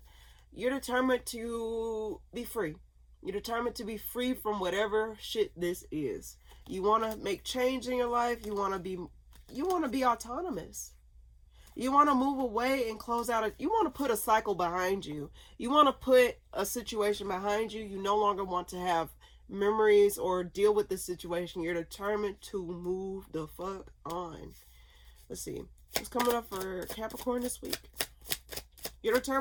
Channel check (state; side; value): identical; both; correlation 1.00